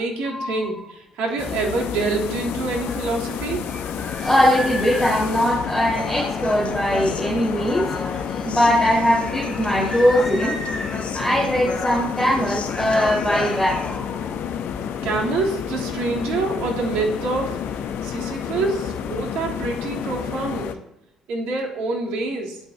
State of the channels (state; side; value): normal; both; correlation 0.76